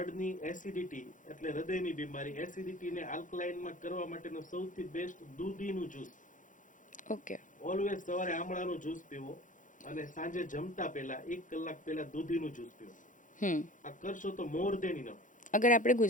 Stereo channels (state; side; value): late; right; 0.38 ms